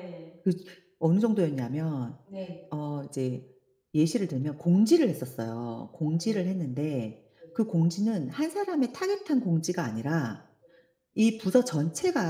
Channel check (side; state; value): both; identical; correlation 1.00